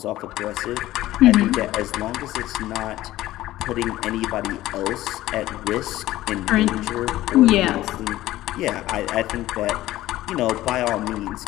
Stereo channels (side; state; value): right; quieter; 15.5 dB